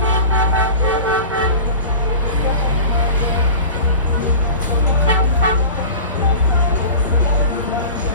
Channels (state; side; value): inverted; both; correlation -0.35